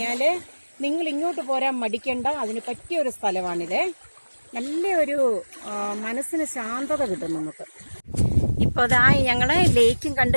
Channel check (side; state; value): both; inverted; correlation -1.00